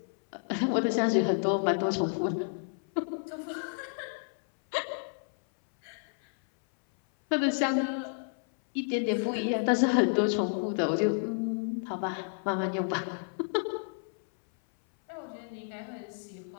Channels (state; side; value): silent; right; 57 dB below the other